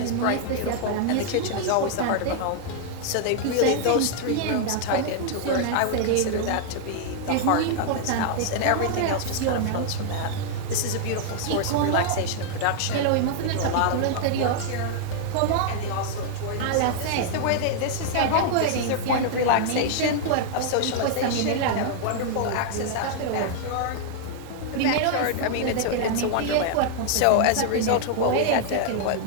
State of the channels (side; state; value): both; different; correlation -0.01